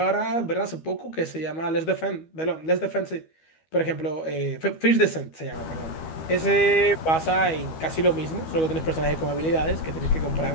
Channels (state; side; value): late; right; 12 ms